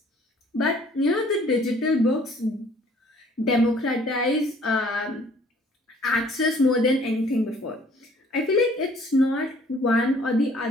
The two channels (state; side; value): normal; both; correlation 0.57